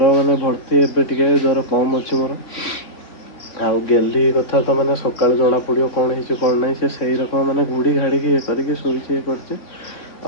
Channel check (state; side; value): late; right; 3.6 ms